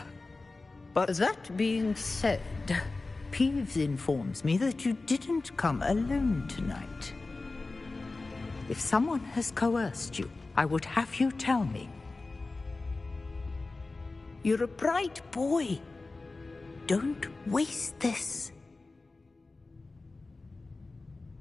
But That being said, Peeves informs me that you didn't come alone tonight. If someone has coerced you, I would have you tell me. You're a bright boy. Don't waste this.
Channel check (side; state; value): right; quieter; 3.5 dB